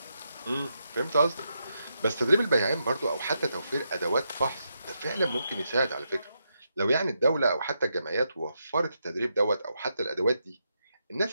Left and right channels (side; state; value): both; inverted; correlation -0.83